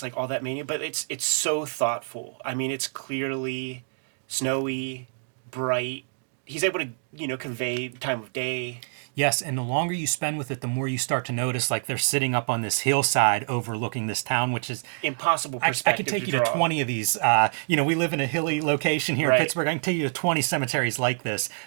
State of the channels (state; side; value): silent; left; digital silence